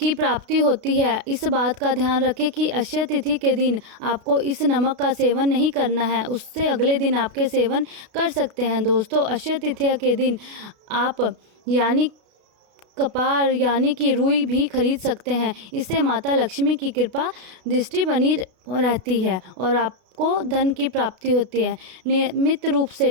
प्राप्ति होती है। इस बात का ध्यान रखें कि अक्षय तिथि के दिन आपको इस नमक का सेवन नहीं करना है, उससे अगले दिन आपके सेवन कर सकते हैं। दोस्तों, अक्षय तृतीया के दिन आप यानी कपार यानी कि रुई भी खरीद सकते हैं। इससे माता लक्ष्मी की कृपा दृष्टि बनी रहती है और आपको धन की प्राप्ति होती है। नियमित रूप से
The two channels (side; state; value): left; late; 33 ms